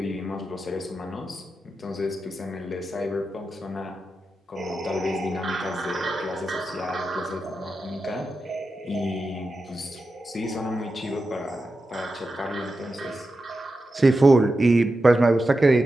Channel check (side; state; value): both; normal; correlation 0.90